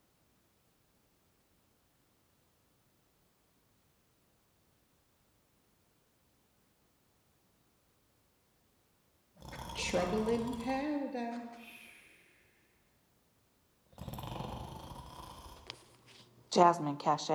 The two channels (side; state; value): both; identical; correlation 1.00